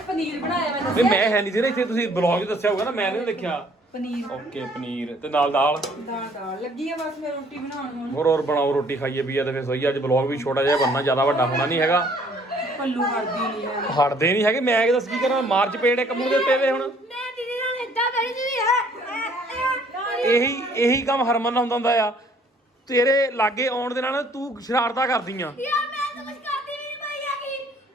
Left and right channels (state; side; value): normal; both; correlation 0.60